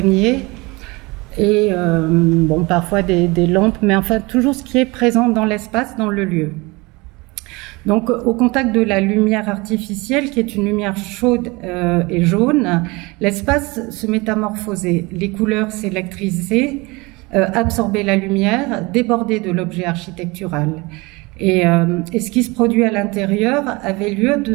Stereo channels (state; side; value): quieter; left; 24.6 dB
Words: et bon, parfois des lampes, mais enfin toujours ce qui est présent dans l'espace, dans le lieu. Donc au contact de la lumière artificielle, qui est une lumière chaude et jaune, l'espace se métamorphosait, les couleurs s'électrisaient, absorber la lumière, déborder de l'objet architectural. Et ce qui se produit à l'intérieur avait lieu